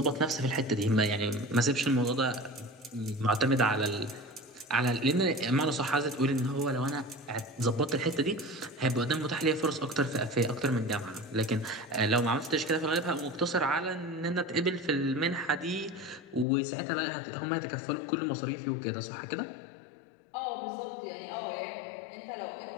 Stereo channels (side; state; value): right; drops out; at 16.4 s